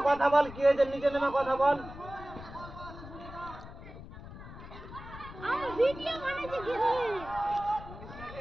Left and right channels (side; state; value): left; noise; rumble, 14 dB below the sound